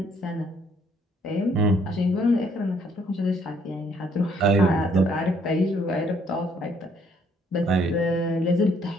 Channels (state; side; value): normal; both; correlation 0.65